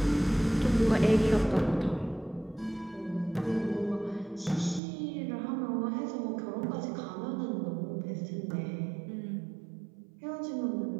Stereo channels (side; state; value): left; drops out; at 4.8 s